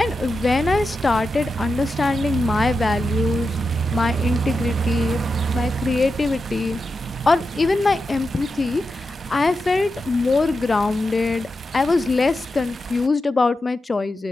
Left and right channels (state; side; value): normal; both; correlation 0.89